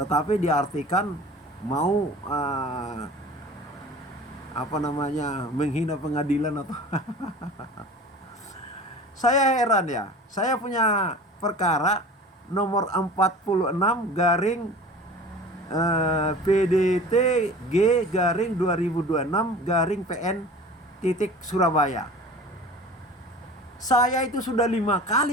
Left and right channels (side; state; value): both; normal; correlation 0.40